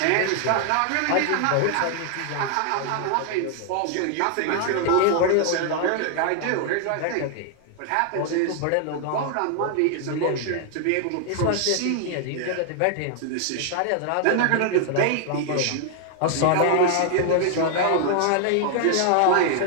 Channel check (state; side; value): different; both; correlation 0.00